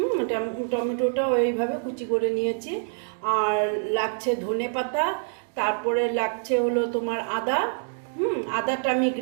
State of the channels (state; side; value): silent; left; 61 dB below the other